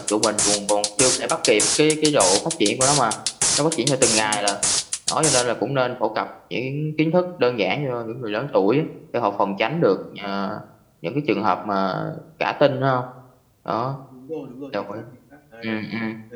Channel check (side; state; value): both; identical; correlation 1.00